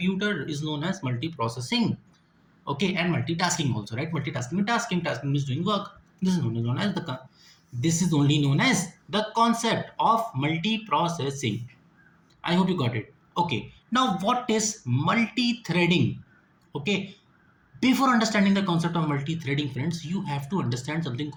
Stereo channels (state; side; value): identical; both; correlation 1.00